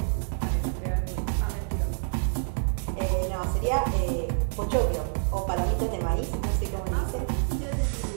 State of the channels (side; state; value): left; silent; 60 dB below the other